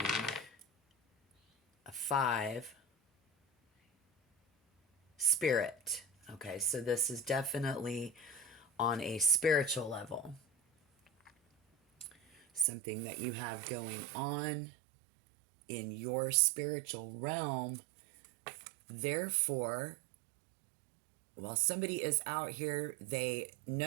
a 5, spirit. Okay, so this is definitely on a spiritual level. Something that you have going on in your spiritual realm. Therefore, while somebody is out here, they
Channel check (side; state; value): left; drops out; at 12.7 s